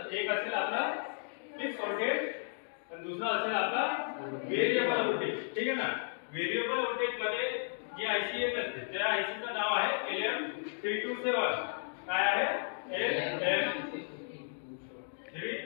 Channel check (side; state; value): right; silent; digital silence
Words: एक असेल आपला फिक्स व्होल्टेज आणि दुसरा असेल आपला व्हेरिएबल व्होल्टेज, ठीक आहे ना? व्हेरिएबल व्होल्टेज मध्ये जी आयसी येत असते त्या आयसीचं नाव आहे LM327। काय आहे?